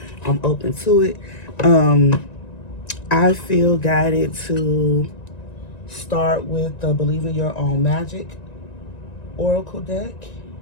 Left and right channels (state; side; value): late; right; 1.9 ms